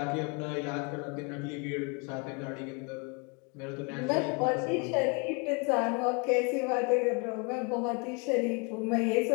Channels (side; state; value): right; quieter; 32.2 dB